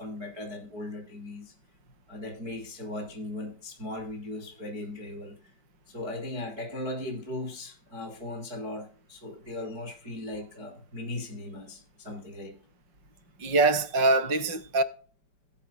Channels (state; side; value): late; left; 5.1 ms